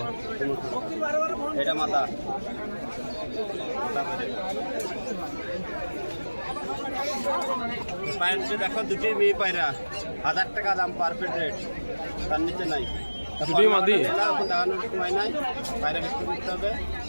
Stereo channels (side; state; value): both; inverted; correlation -1.00